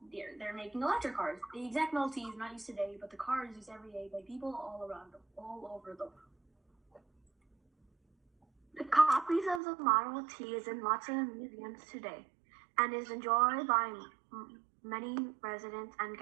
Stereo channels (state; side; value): drops out; left; at 9.6 s